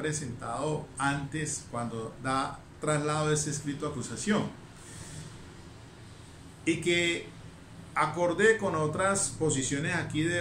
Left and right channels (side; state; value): both; identical; correlation 1.00